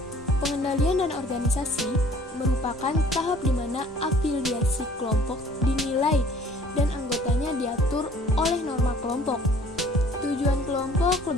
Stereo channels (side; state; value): both; normal; correlation 0.54